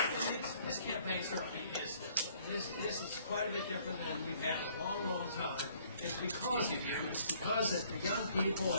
This campaign certainly is different. This is quite a bit different than we've had in a long, long time. It's because of you. It's because that the young people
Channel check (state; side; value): inverted; both; correlation -0.61